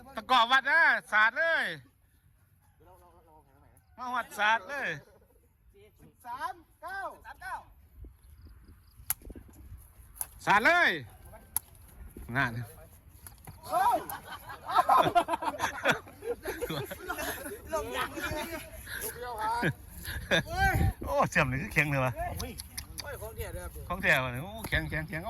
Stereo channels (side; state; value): both; identical; correlation 1.00